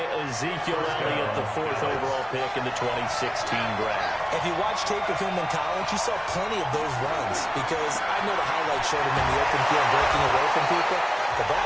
Ezekiel Elliott, the 4th overall pick in the 2016 draft. If you watch tape of him in college, you saw plenty of those runs because I know the highlight showed him in the open field breaking away from people, but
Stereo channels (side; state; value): both; identical; correlation 1.00